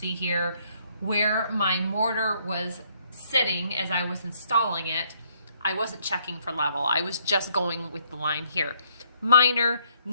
here where my mortar was sitting as I was installing it. I wasn't checking for level. I was just going with the line here. Minor,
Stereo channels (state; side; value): inverted; both; correlation -0.68